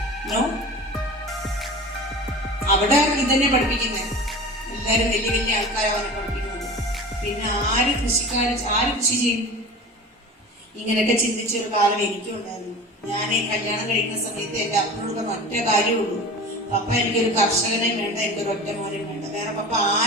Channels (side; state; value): both; normal; correlation 0.35